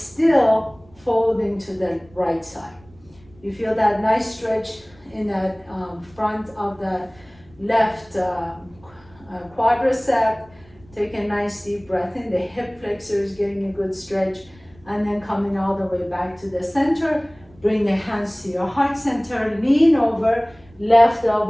folding to the right side. You feel that nice stretch in the front of the left quadricep. Take a nice deep breath in. The hip flexor is getting a good stretch. And then coming all the way back to the center. Bring the hands to your heart center. Lean over. Left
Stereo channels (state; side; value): noise; right; rumble, 27 dB below the sound